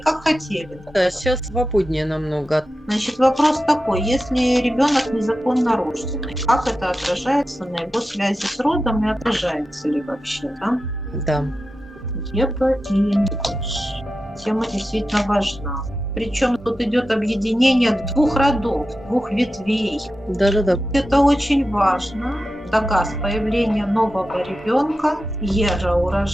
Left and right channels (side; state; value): both; normal; correlation 0.92